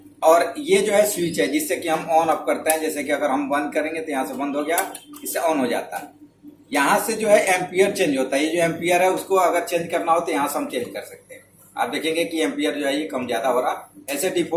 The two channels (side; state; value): both; identical; correlation 1.00